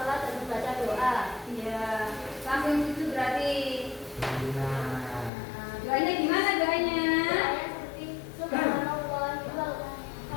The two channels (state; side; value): drops out; right; at 5.3 s